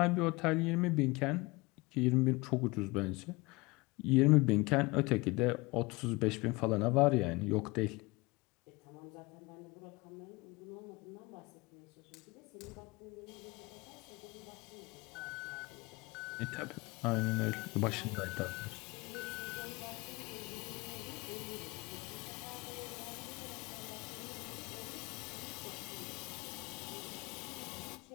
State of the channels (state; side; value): quieter; right; 24.1 dB